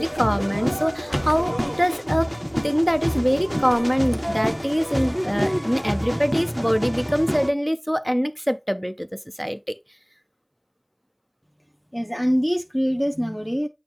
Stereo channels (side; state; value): both; identical; correlation 1.00